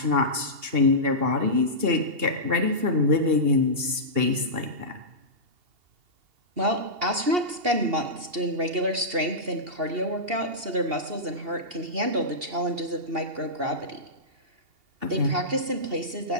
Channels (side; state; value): left; late; 2.8 ms